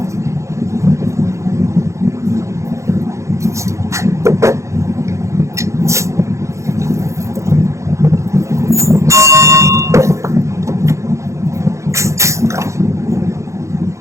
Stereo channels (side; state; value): left; late; 0.14 ms